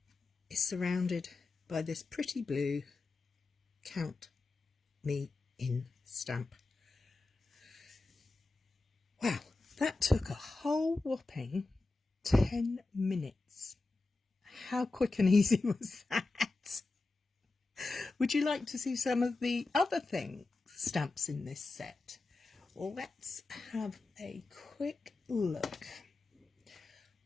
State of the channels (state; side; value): quieter; right; 3.5 dB